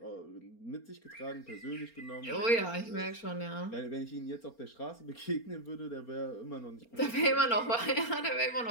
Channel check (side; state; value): right; late; 4.3 ms